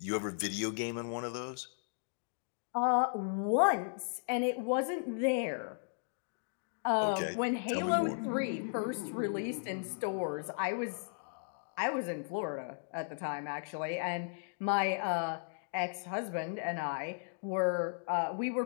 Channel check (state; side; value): silent; right; digital silence